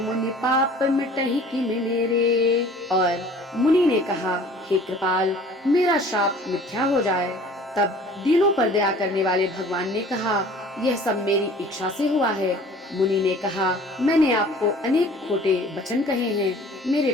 पाप मिटहि किम मेरे। और मुनि ने कहा, हे कृपाल, मेरा शाप मिथ्या हो जाए। तब दीनों पर दया करने वाले भगवान ने कहा, यह सब मेरी इच्छा से हुआ है। मुनि ने कहा, मैंने आपको अनेक खोटे वचन कहे हैं, मेरे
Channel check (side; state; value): both; normal; correlation 0.49